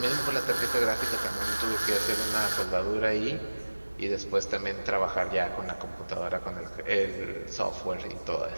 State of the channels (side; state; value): both; inverted; correlation -1.00